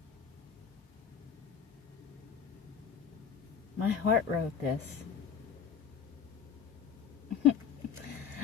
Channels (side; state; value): right; quieter; 7.3 dB